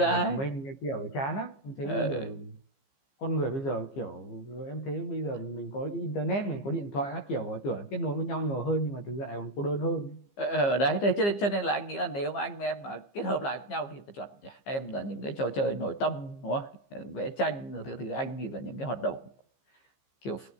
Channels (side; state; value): right; late; 15 ms